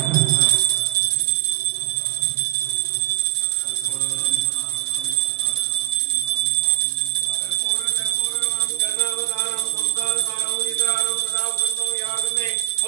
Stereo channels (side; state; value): left; quieter; 15.9 dB